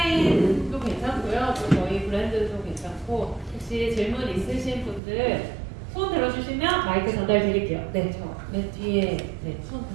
괜찮고요, 또 저희 브랜드도 괜찮고 혹시 질문 있으신 분들 손 들어주시면 마이크 전달 드릴게요. 네, 저 맨 뒤에 네, 손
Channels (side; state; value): left; drops out; at 5.0 s